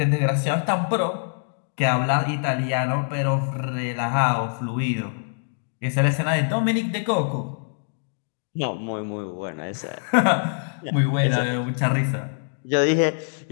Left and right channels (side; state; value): right; silent; digital silence